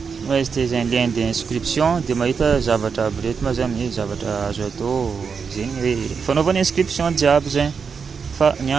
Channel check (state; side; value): quieter; left; 5.9 dB